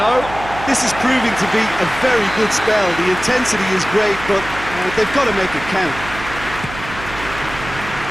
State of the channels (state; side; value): noise; right; hum, 12 dB below the sound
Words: This is proving to be a very good spell. The intensity is great, but they've got to make it count.